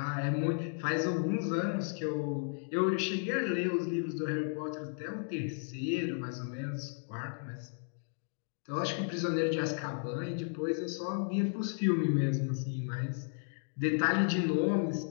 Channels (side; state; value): right; silent; 55 dB below the other